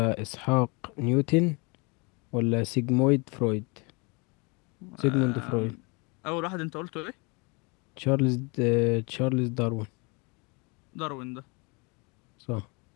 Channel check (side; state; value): right; quieter; 30.0 dB